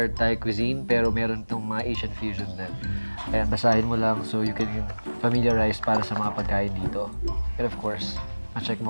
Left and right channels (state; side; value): inverted; both; correlation -1.00